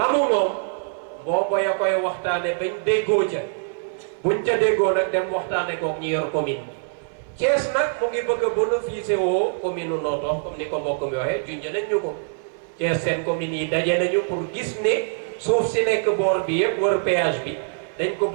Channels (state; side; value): silent; left; 58 dB below the other